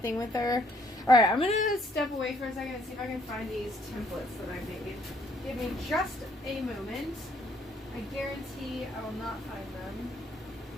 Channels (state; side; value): normal; both; correlation 0.66